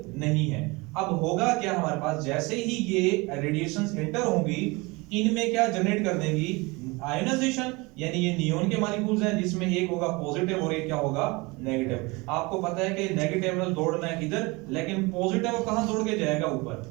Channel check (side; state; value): left; quieter; 25.2 dB